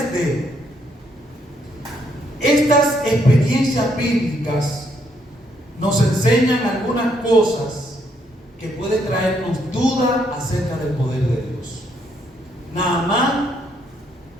de estas experiencias bíblicas nos enseñan algunas cosas que pueden traernos duda acerca del poder de Dios. Naamán,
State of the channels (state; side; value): normal; both; correlation 0.72